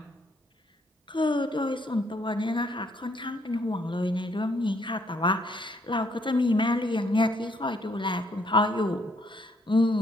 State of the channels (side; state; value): both; normal; correlation 0.69